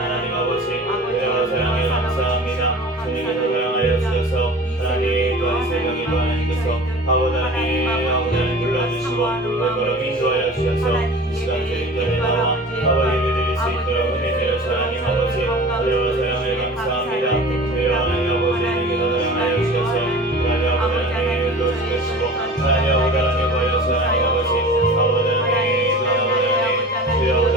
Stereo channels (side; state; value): both; normal; correlation 0.39